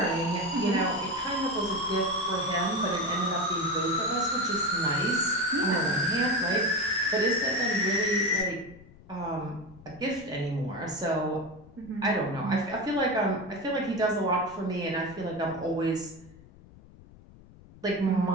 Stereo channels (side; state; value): left; noise; rumble, 22 dB below the sound